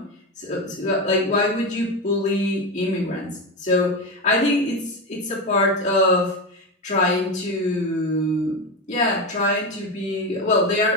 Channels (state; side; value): normal; both; correlation 0.16